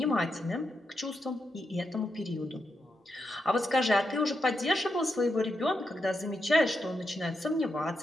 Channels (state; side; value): normal; both; correlation 0.84